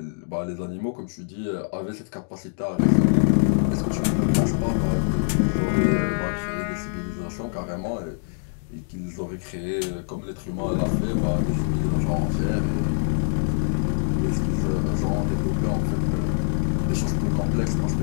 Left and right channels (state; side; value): silent; right; digital silence